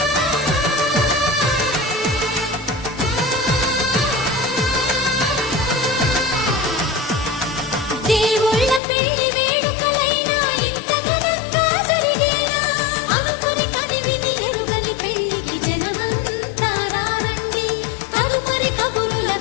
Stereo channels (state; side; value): drops out; right; at 8.8 s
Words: దేవుళ్ళ పెళ్లి వేడుకలైనా ఇంత ఘనంగా జరిగేనా అనుకుని కదివిని ఎరుగని పెళ్లికి జనమంతా రారండి తదుపరి కబురుల